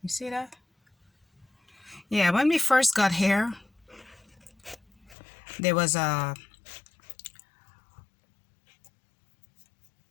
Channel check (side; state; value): right; drops out; at 5.2 s